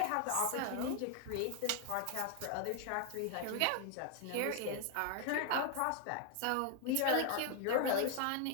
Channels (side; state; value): both; different; correlation 0.00